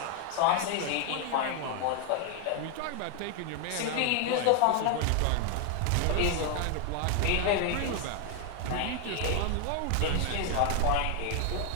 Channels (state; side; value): different; both; correlation 0.01